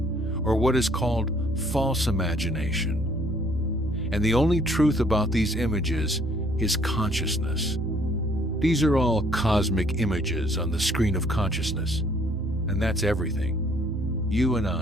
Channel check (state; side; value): normal; both; correlation 0.62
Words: or what is called false imagination. And the only truth about these images is consciousness. These are all cosmic images on the screen of consciousness. And that's everything. You and